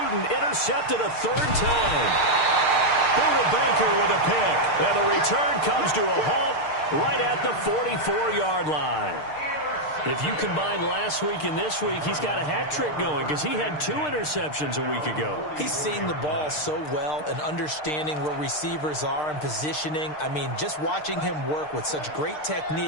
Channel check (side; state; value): right; late; 6.6 ms